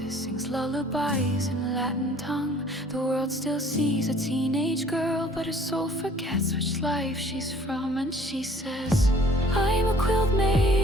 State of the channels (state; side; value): normal; both; correlation 0.55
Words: sings lullabies in Latin tongue. The world still sees a teenage girl, but her soul forgets which life she's from. And she says, I'm a quilt